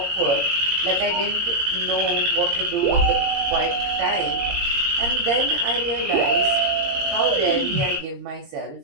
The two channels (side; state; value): left; late; 19 ms